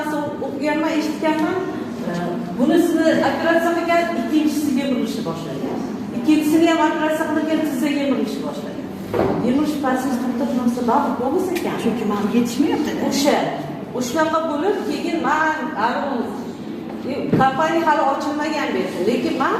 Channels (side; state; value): both; identical; correlation 1.00